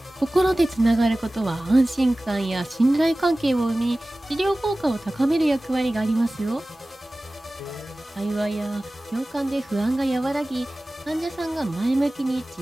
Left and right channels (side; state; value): both; normal; correlation 0.97